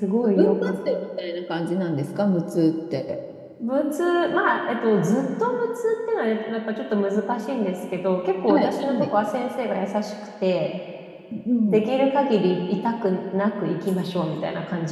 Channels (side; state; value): both; identical; correlation 1.00